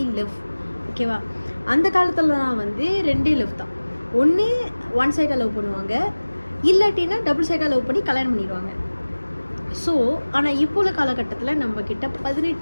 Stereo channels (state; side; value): inverted; both; correlation -1.00